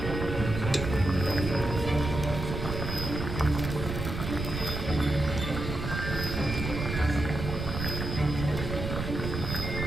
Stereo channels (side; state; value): right; noise; rumble, 5 dB below the sound